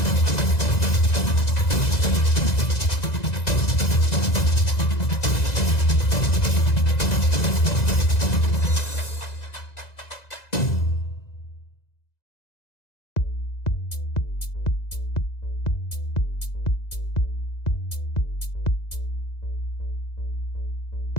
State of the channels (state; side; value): late; right; 2.0 ms